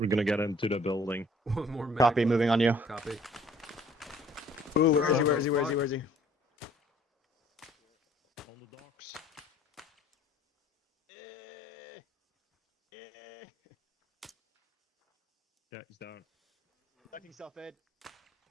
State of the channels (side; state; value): both; normal; correlation 0.57